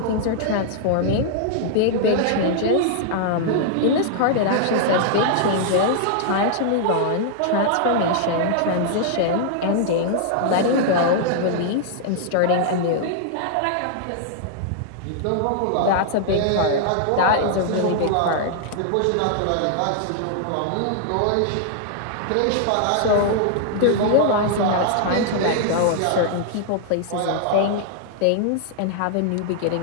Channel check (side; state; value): both; different; correlation -0.01